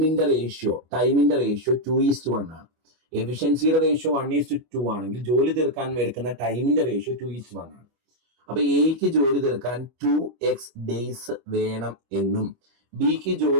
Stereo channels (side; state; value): left; late; 25 ms